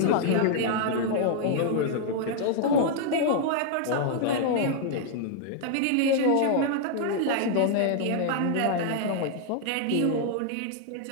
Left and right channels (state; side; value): different; both; correlation 0.00